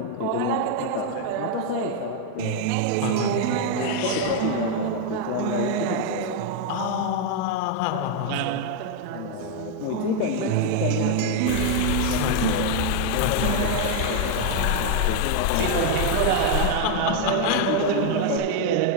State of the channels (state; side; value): different; both; correlation 0.00